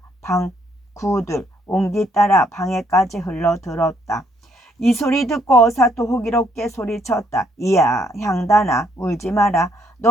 방 구들 옹기 따라 방에까지 흘러들었다. 이 소리 듣고 어사또 호기롭게 소리쳤다. 이야 향단아 울지 마라.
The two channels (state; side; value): normal; both; correlation 0.70